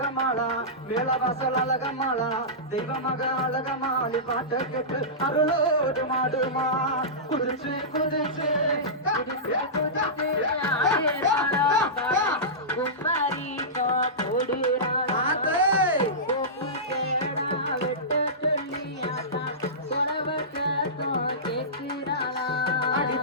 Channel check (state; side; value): normal; both; correlation -0.17